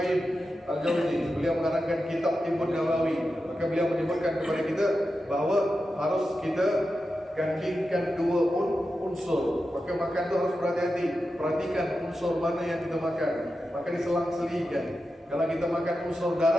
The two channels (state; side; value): normal; both; correlation 0.90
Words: Al-Jauzi, beliau mengarangkan kitab Tibbun Nabawi. Maka beliau menyebutkan kepada kita bahawa harus kita gandingkan 2 unsur. Maka makan itu harus berhati-hati, perhatikan unsur mana yang kita makan. Maka diselang-selingkan. Kalau kita makan unsur